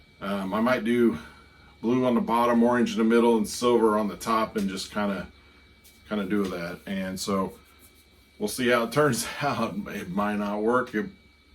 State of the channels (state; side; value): identical; both; correlation 1.00